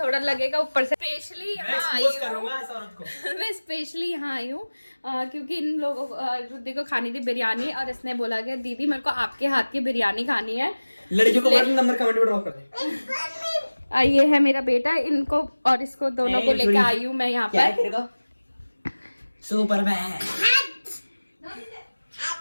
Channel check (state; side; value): inverted; both; correlation -1.00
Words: लगेगा ऊपर से। स्पेशली यहाँ आई हूँ, करूंगा इस औरत को। मैं स्पेशली यहाँ आई हूँ क्योंकि इन लोगों को, रुद्दी को खानी थी बिरयानी, और इसने बोला कि दीदी मेरे को आपके हाथ की बिरयानी खानी है। लड़कियों को नंबर कमेंट में ड्रॉप कर दे। ये है मेरा बेटा, इनको और इसको दोनों को लेके आई हूँ मैं यहाँ पर। सुपरमैन।